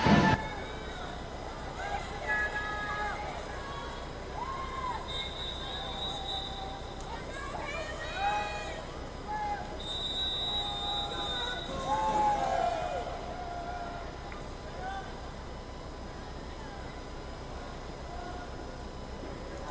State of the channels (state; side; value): identical; both; correlation 1.00